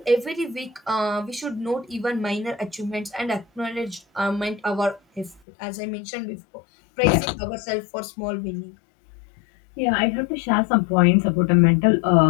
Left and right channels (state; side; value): drops out; right; at 5.4 s